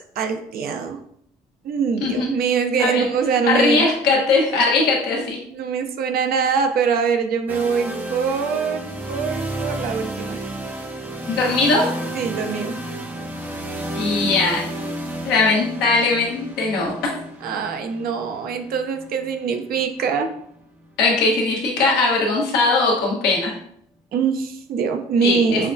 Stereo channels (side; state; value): both; normal; correlation 0.41